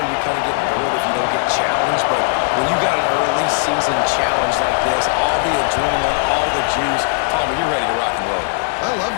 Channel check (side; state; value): right; silent; digital silence